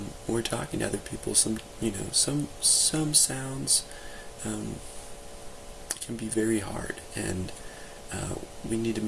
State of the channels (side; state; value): both; identical; correlation 1.00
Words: we're talking to other people, some sounds can be very hard, and we need to